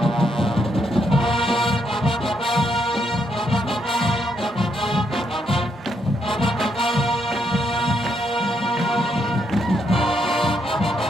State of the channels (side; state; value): both; normal; correlation 0.77